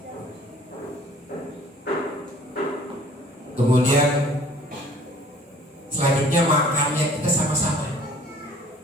Kemudian selanjutnya makannya kita sama-sama.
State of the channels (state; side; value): normal; both; correlation 0.52